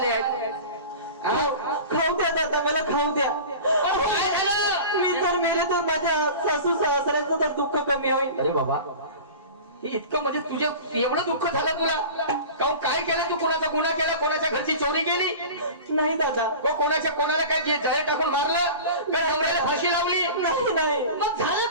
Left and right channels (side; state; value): both; inverted; correlation -0.36